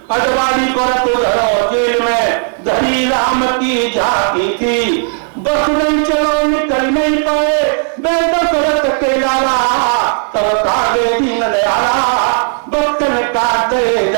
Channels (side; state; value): left; silent; 59 dB below the other